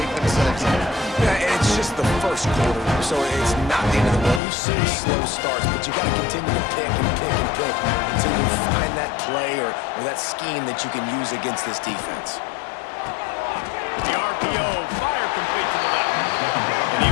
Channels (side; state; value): right; drops out; at 4.4 s